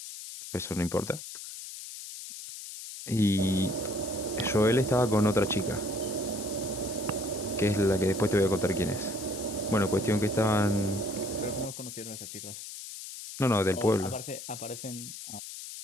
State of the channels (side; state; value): left; noise; hiss, 10 dB below the sound